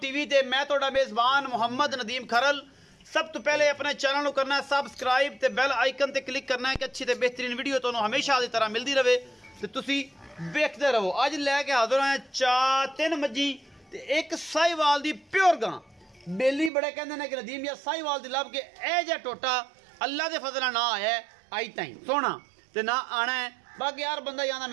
ते मैं तुहाडा मेज़बान मुहम्मद नदीम खरल। सब तो पहले अपने चैनल को करना है सबसक्राइब ते बेल आइकन ते क्लिक करना है कि अच्छी ते बेहतरीन वीडियो तुहानू हमेशा की तरह मिलती रहे ते तुसी वेखदे रहो। अज लैके हाजिर हैं 3 मज्जी ते एक साहिवाल दी प्योर गां। बेली बड़े कहते हैं कि नदीम या साहिवाल दी लब के ए जा टोटा अल्लाह के फजल ना आया आई ताई सोना ते ना आना है। बाकी यार बंदा ही आना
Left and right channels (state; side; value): drops out; left; at 16.7 s